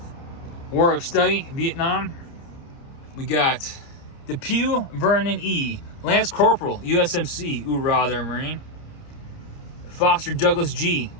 war of study, Vietnam, we got Depew Vernon E., Lance Corporal USMC, Hoorah there, Marine. Foster Douglas G.,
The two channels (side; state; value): right; late; 29 ms